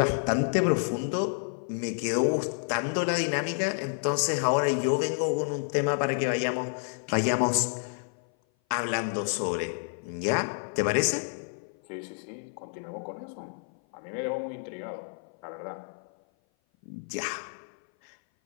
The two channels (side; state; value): right; silent; 56 dB below the other